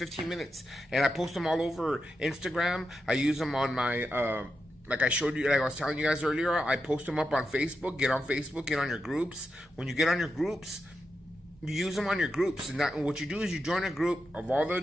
minutes, and I post them all over Instagram. I use them on my like I showed you, like I was telling you guys earlier, I post them up on Facebook. Get on Facebook, get on your groups. When you get on your groups, you use them on your groups, and what you do is you join a group of all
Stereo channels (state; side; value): normal; both; correlation 0.87